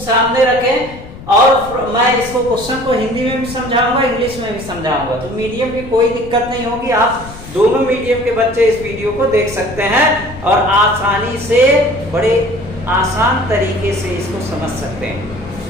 रखें और मैं इसको क्वेश्चन को हिंदी में भी समझाऊंगा, इंग्लिश में भी समझाऊंगा। तो मीडियम की कोई दिक्कत नहीं होगी, आप दोनों मीडियम के बच्चे इस वीडियो को देख सकते हैं और आसानी से, बड़े आसान तरीके से इसको समझ सकते हैं।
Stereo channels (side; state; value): left; noise; rumble, 15 dB below the sound